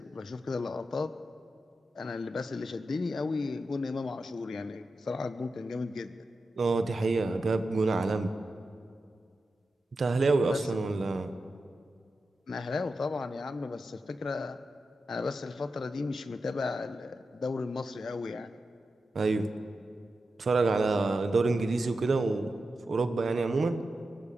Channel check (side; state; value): both; normal; correlation 0.90